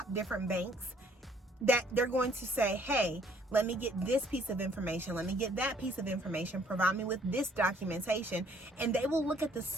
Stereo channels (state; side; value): normal; both; correlation 0.61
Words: different banks, that they're going to say, hey, let me get this piece of information. Let me get that piece of information. Provide me with this documentation. And they will look at the